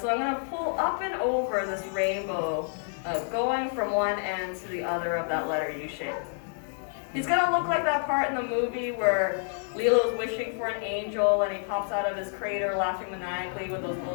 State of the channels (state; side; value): silent; right; 59 dB below the other